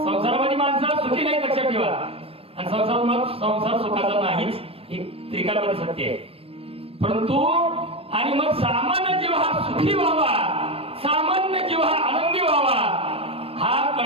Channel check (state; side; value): late; left; 0.28 ms